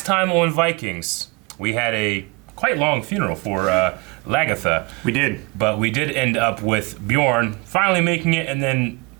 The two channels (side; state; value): left; quieter; 26.8 dB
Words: time on Vikings, we had a quite long funeral for Lagatha. We did. But we did end up with Bjorn finally making it and then